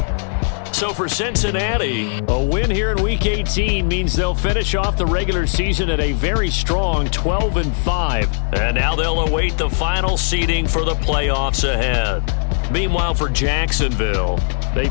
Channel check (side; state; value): right; silent; digital silence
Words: So for Cincinnati, a win here in Week 18 means they'll finish off the regular season at a very strong 12-5. And now they'll await the final seeding for the playoffs ahead. Meanwhile, for Jacksonville, they